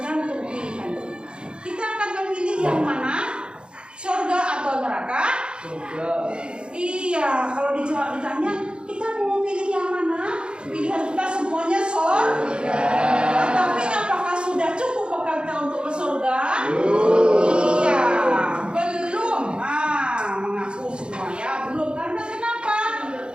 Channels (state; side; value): late; left; 0.053 ms